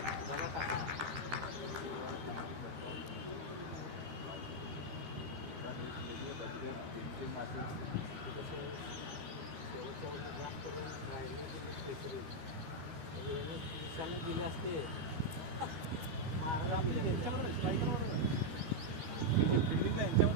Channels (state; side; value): late; left; 12 ms